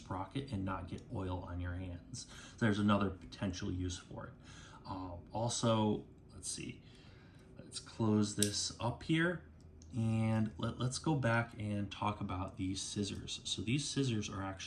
and not get oil on your hands. So there's another potential use for it. Also, let's see, let's close this up here. And let's go back and talk about these scissors. So these scissors are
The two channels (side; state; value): both; identical; correlation 1.00